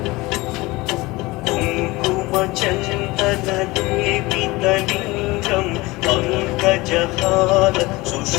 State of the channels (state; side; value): quieter; right; 21.6 dB